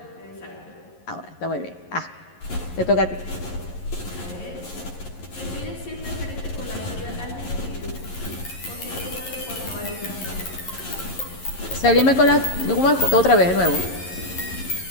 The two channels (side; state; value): right; late; 11 ms